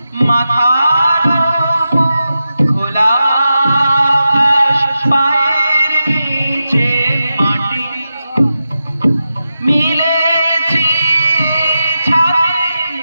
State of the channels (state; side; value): inverted; both; correlation -0.90